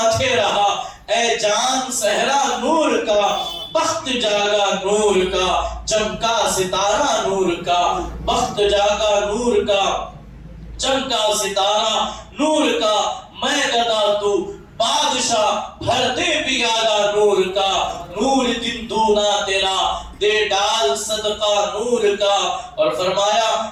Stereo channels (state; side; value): identical; both; correlation 1.00